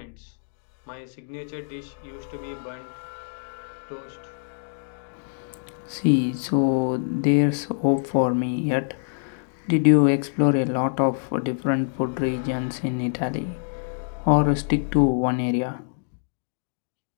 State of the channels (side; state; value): right; silent; digital silence